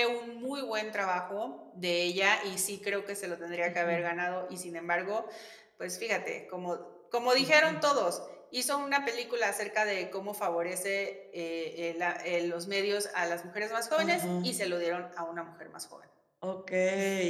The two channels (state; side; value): identical; both; correlation 1.00